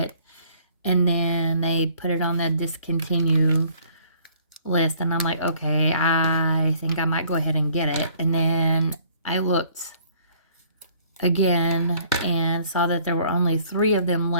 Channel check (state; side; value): inverted; both; correlation -0.59